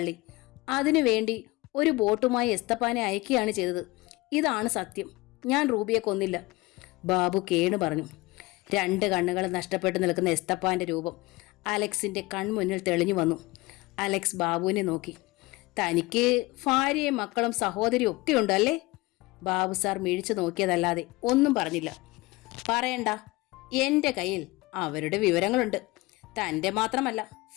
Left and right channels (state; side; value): quieter; right; 21.9 dB